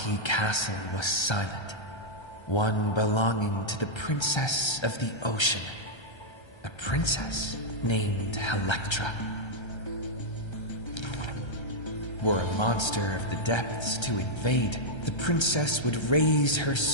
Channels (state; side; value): late; right; 1.3 ms